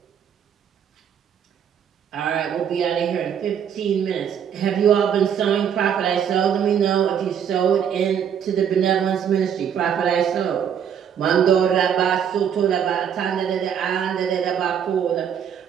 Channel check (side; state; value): left; quieter; 8.4 dB